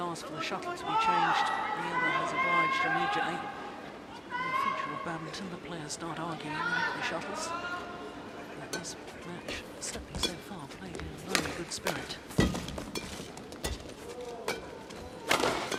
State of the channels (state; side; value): identical; both; correlation 1.00